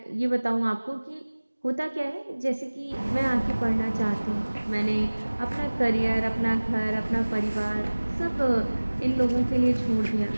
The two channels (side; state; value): both; inverted; correlation -1.00